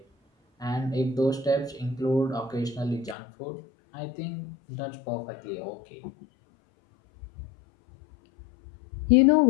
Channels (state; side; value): drops out; right; at 3.2 s